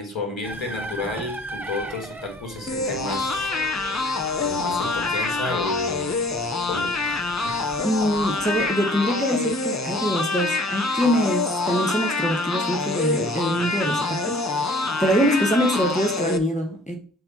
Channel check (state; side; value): normal; both; correlation 0.53